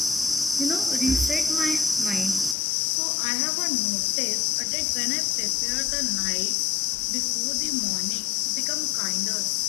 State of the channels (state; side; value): drops out; right; at 2.6 s